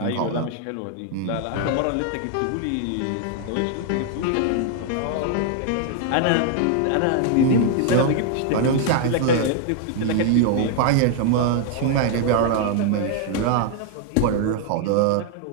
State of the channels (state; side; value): different; both; correlation 0.00